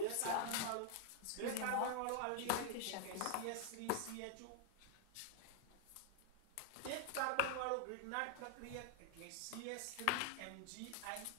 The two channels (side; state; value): both; different; correlation 0.00